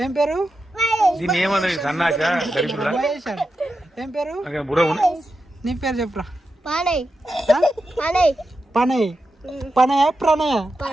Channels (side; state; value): both; normal; correlation 0.89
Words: ఏం పేరు? మహేష్ అని ఏం పేరు? నీ పేరు చెప్పురా. పనయ్. పనయ ప్రణయ?